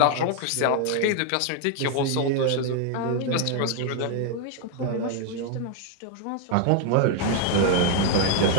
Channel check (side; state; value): both; different; correlation 0.00